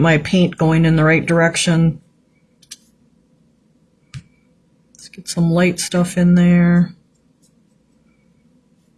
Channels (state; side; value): identical; both; correlation 1.00